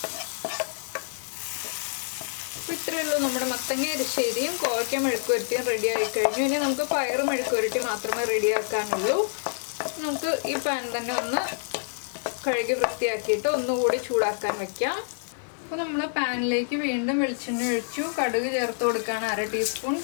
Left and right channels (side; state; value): right; silent; 60 dB below the other